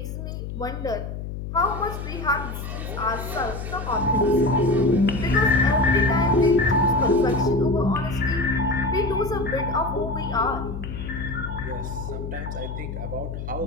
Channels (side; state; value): left; noise; hum, 7 dB below the sound